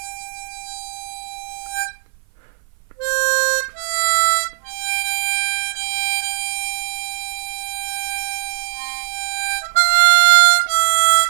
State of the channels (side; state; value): left; silent; 58 dB below the other